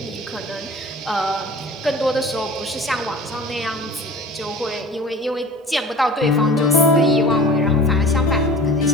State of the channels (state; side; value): normal; both; correlation 0.41